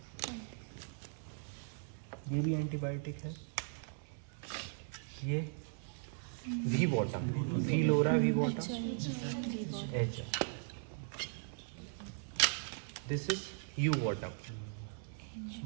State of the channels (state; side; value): silent; left; 52 dB below the other